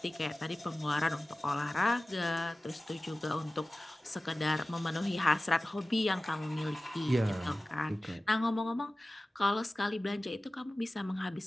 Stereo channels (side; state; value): both; normal; correlation 0.97